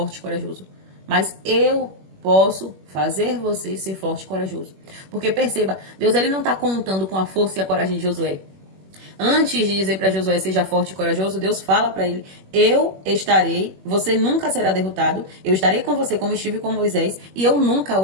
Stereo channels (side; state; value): left; late; 21 ms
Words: e corajoso. Mas eu posso fazer você ser forte e corajoso. Porque perceba, Deus ele não está contando com a força e a coragem de Josué. Antes de dizer para Josué, seja forte e corajoso, Deus fala para ele, eu estarei, você nunca será derrotado, eu estarei com você como estive com Moisés e eu nunca